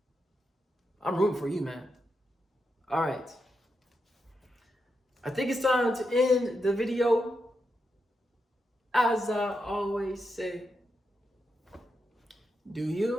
I'm rooting for you, man. All right. I think it's time to end the video. As I always say, do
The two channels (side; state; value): both; normal; correlation 0.85